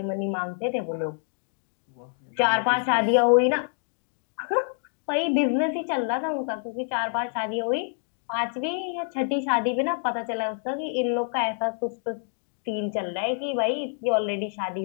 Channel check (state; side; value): silent; right; 60 dB below the other